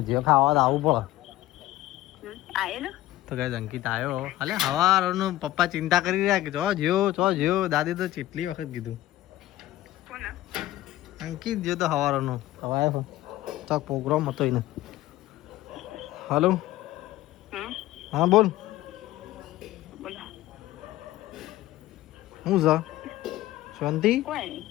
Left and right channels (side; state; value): right; quieter; 15.7 dB